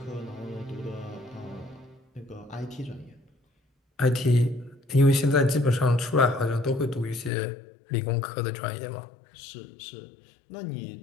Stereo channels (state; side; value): drops out; right; at 7.3 s